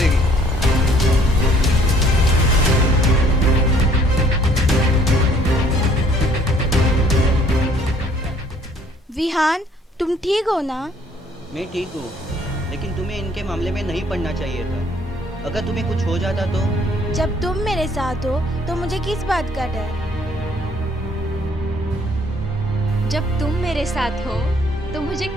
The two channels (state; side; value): normal; both; correlation 0.60